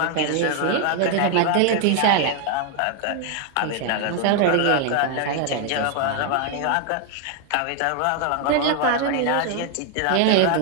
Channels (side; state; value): both; different; correlation 0.00